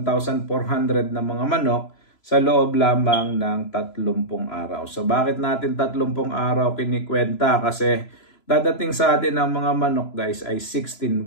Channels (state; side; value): late; right; 3.0 ms